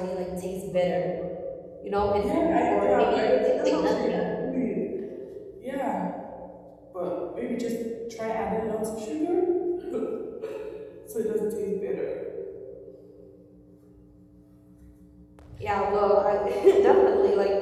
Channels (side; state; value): both; identical; correlation 1.00